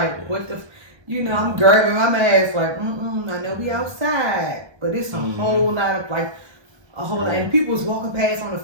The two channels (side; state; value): left; late; 1.2 ms